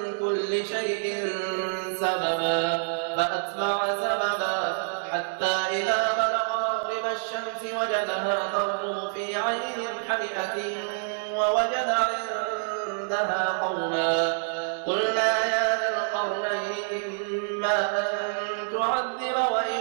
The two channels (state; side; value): silent; left; digital silence